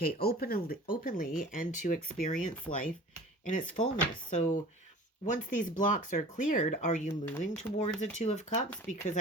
openly and to experience life in its fullness. So once these blocks are cleared, are you moving towards a Two of Cups? Because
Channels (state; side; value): normal; both; correlation 0.43